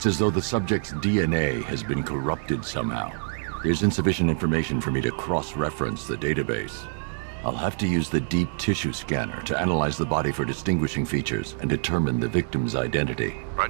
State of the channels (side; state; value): left; silent; digital silence